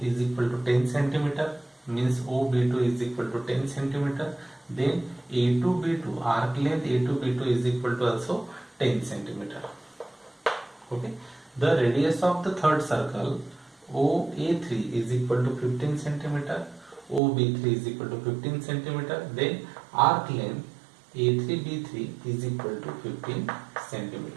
is equal to 10 centimeter, means OB2 is equal to 10 centimeter. Then A2B2, arc length A2B2 is equal to also 10 centimeter. Okay, the radius of the third circle OA3 is equal to 15 centimeter, OB3 is equal to 15 centimeter. Then arc length A3B3 is equal to 15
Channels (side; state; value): left; drops out; at 17.2 s